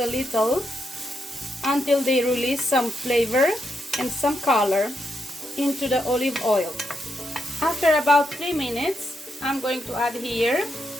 little until they release some flavor and some color into the olive oil. After about 3 minutes, I'm going to add here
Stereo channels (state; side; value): normal; both; correlation 0.82